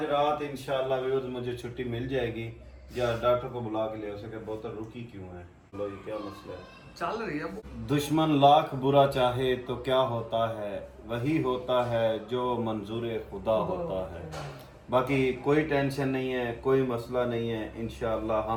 रात इंशाल्लाह व्यूअर्स मुझे छुट्टी मिल जाएगी, या डॉक्टर को बुला के ले हो सके, बोतल रुकी क्यों है, लो ये क्या मसला है। चल रही है। दुश्मन लाख बुरा चाहे तो क्या होता है, वही होता है जो मंजूर खुदा होता है। बाकी कोई टेंशन नहीं है, कोई मसला नहीं है, इंशाअल्लाह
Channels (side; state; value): both; identical; correlation 1.00